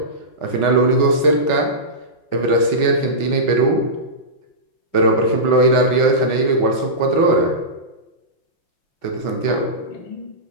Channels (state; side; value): late; right; 5.3 ms